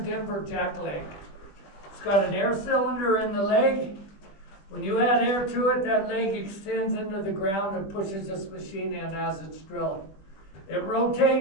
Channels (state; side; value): late; right; 21 ms